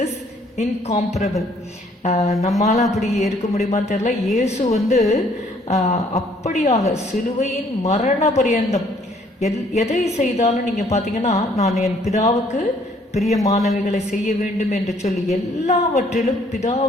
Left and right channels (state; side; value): normal; both; correlation 0.62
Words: is incomparable. நம்மால அப்படி இருக்க முடியுமான்னு தெரியல. இயேசு அப்படியாக சிலுவையின் மரண பரியந்தம் எதை செய்தாலும் நீங்க பாத்தீங்கன்னா, நான் என் பிதாவுக்கு பிரியமானவைகளை செய்ய வேண்டும் என்று சொல்லி எல்லாவற்றிலும்